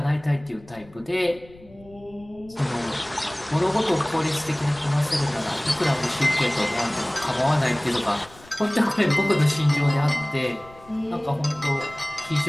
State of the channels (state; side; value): noise; left; rumble, 23 dB below the sound